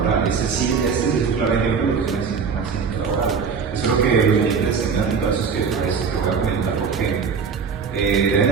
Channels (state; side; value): quieter; left; 5.8 dB